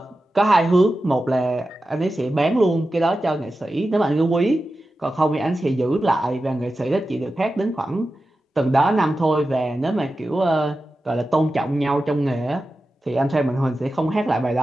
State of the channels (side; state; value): both; normal; correlation 0.93